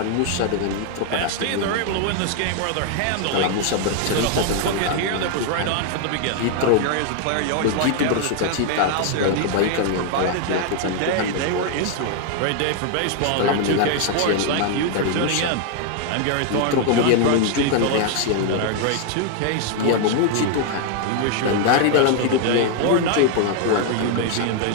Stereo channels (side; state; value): both; different; correlation 0.00